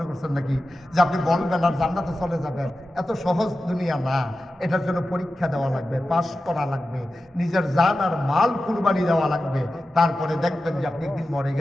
করছেন নাকি যে আপনি বলবেন আর জান্নাতে চলে যাবেন? এত সহজ দুনিয়া না। এটার জন্য পরীক্ষা দেওয়া লাগবে, পাশ করা লাগবে, নিজের জান আর মাল কুরবানি দেওয়া লাগবে। তারপরে দেখবেন যে আপনি একদিন মরে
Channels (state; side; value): normal; both; correlation 0.93